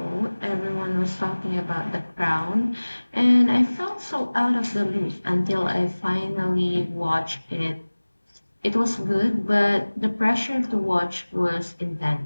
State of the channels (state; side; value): inverted; both; correlation -1.00